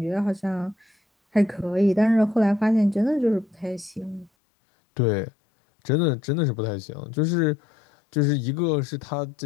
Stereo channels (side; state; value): right; drops out; at 4.3 s